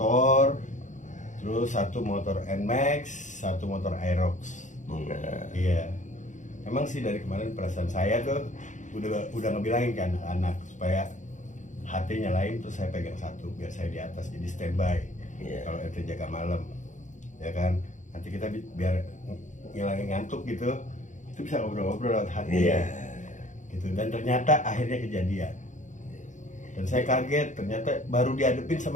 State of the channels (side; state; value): right; late; 0.36 ms